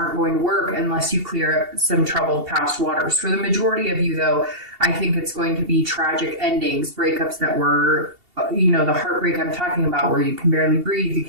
going to work unless you clear up some troubled past waters. For the majority of you, though, I think it's going to be tragic endings, breakups that were, the heartbreak I'm talking about, where you can barely breathe, you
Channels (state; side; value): late; left; 2.8 ms